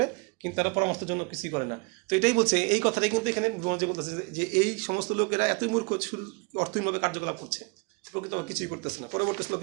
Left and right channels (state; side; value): quieter; left; 29.8 dB